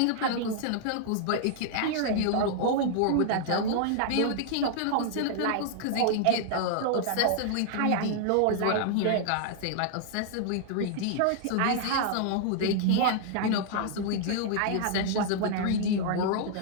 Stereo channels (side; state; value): both; different; correlation -0.01